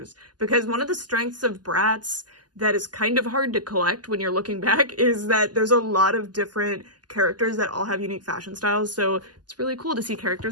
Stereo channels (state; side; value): late; left; 0.70 ms